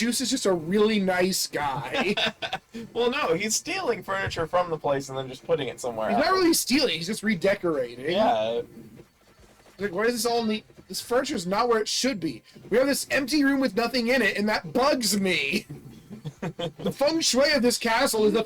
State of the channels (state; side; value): identical; both; correlation 1.00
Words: is just a really nice guy. Well, no, he's stealing furniture from the place and then just putting it somewhere He's else. not really stealing, he's just redecorating. Yeah, Like, why is this all neat? This furniture's not where it should be. We have this empty room with nothing in it, and that bugs me. The feng shui of this castle is